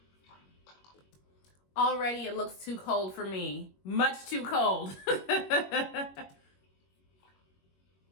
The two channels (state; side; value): late; right; 21 ms